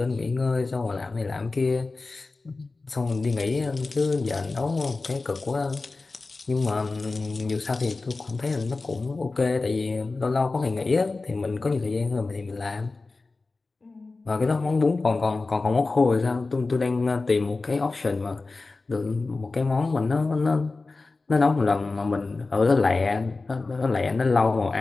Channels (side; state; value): right; quieter; 3.7 dB